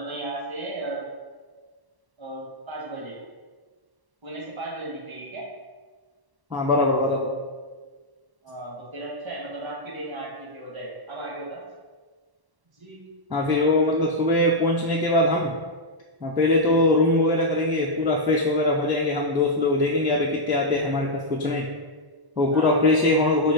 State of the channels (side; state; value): left; late; 1.1 ms